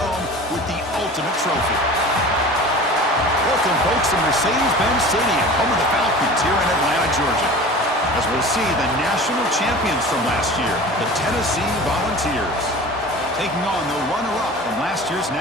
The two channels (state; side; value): normal; both; correlation 0.39